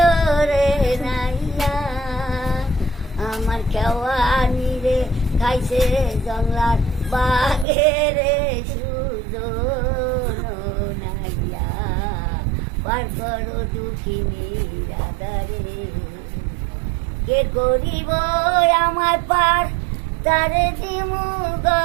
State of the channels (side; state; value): left; drops out; at 7.7 s